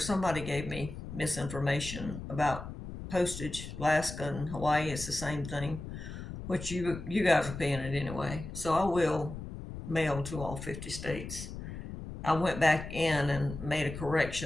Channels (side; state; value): left; noise; rumble, 9 dB below the sound